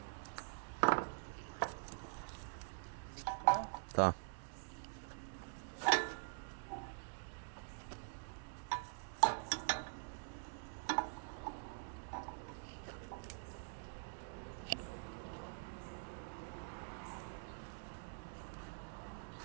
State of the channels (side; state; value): left; silent; digital silence